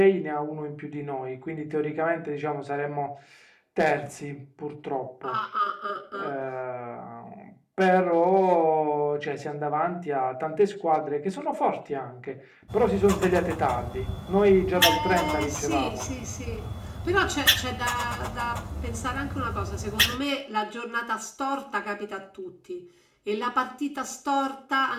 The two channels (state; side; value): identical; both; correlation 1.00